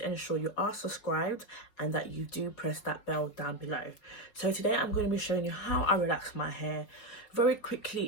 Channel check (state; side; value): late; right; 4.8 ms